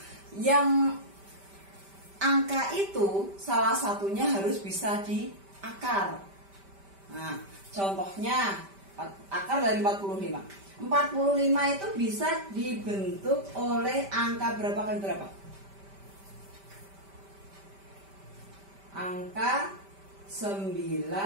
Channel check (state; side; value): late; left; 5.1 ms